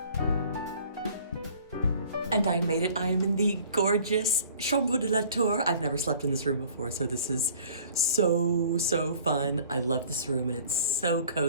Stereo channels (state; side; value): inverted; both; correlation -0.51